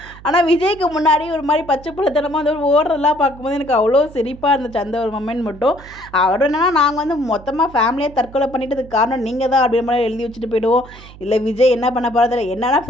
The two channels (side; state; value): right; noise; hum, 19 dB below the sound